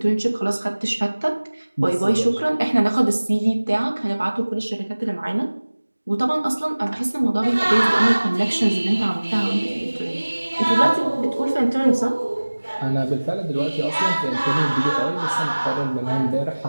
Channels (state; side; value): inverted; both; correlation -1.00